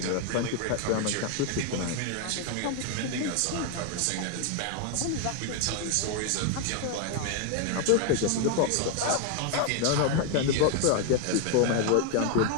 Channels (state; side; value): different; both; correlation 0.01